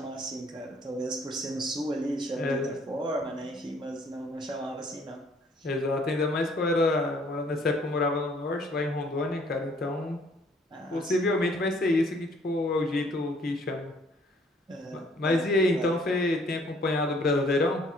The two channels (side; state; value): both; normal; correlation 0.61